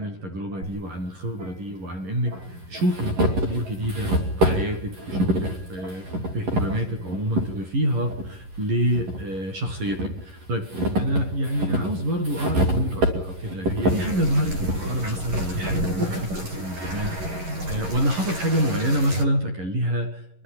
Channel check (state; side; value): late; left; 11 ms